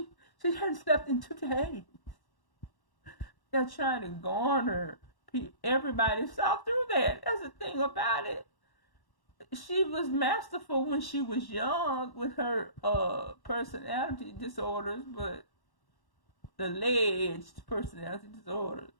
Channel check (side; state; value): right; late; 1.1 ms